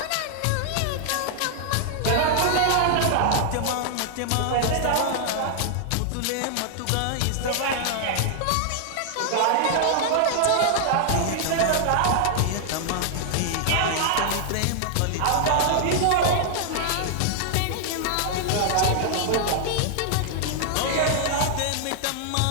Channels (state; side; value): different; both; correlation 0.00